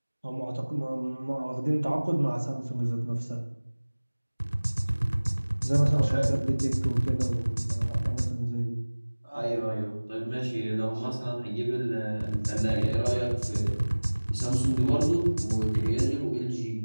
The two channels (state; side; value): inverted; both; correlation -1.00